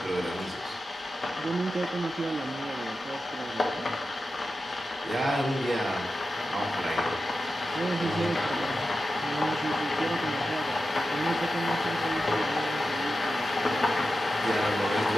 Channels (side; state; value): both; normal; correlation 0.91